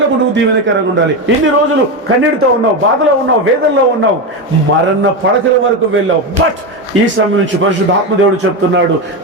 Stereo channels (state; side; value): normal; both; correlation 0.14